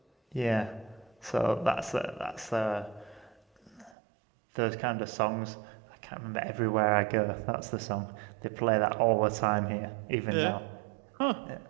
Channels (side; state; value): left; drops out; at 4.0 s